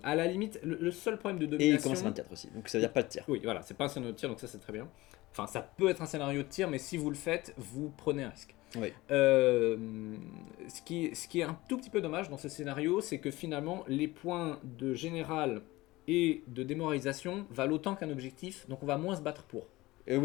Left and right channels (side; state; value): right; quieter; 19.6 dB